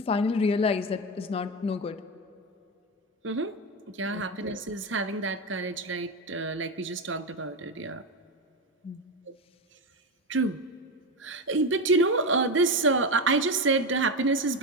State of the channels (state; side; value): normal; both; correlation 0.15